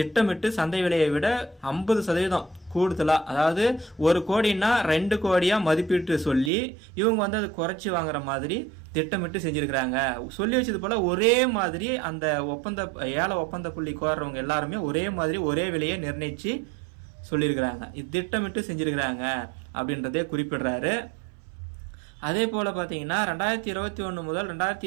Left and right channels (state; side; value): drops out; left; at 6.5 s